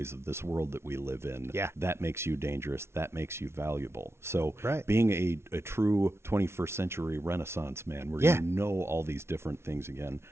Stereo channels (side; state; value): left; late; 0.12 ms